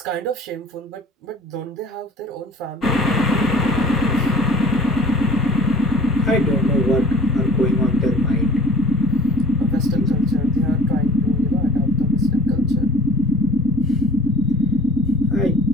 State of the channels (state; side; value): normal; both; correlation 0.49